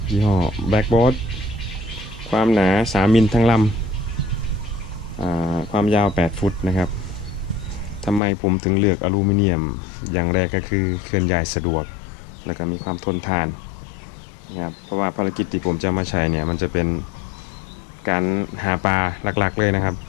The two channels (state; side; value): drops out; right; at 8.2 s